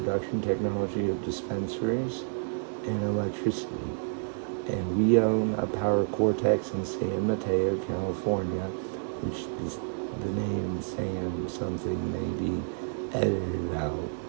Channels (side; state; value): left; silent; digital silence